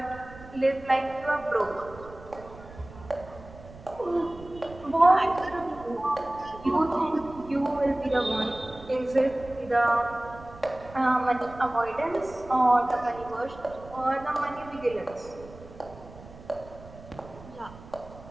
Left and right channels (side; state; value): right; noise; rumble, 18 dB below the sound